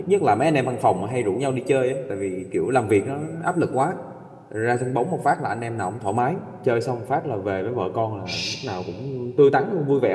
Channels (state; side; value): identical; both; correlation 1.00